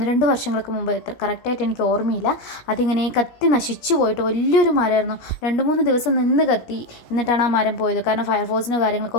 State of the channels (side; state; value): right; late; 17 ms